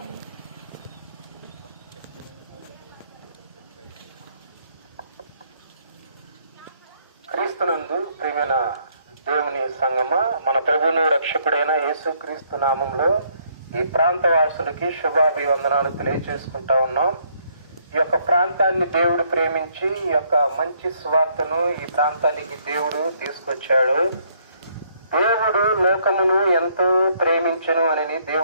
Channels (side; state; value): both; inverted; correlation -0.68